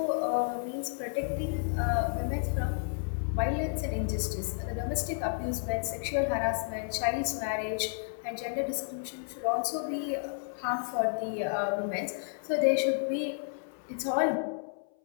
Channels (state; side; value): silent; right; 57 dB below the other